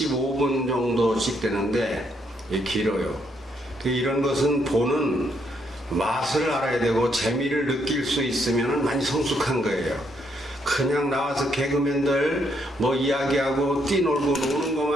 정도씩 되는데 이게 길어요. 이런 것은 보는 맛을 알아야 되고 재미를 느낄 수 있으면 많이 성숙한 거예요. 그냥 나와서 개그맨들 뭐 이야기하고 뛰놀고 노는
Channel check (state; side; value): normal; both; correlation 0.74